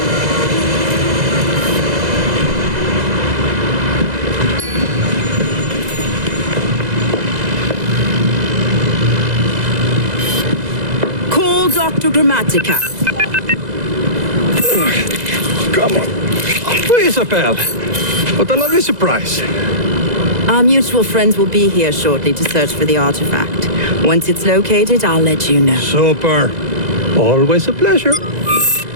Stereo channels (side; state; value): left; late; 2.0 ms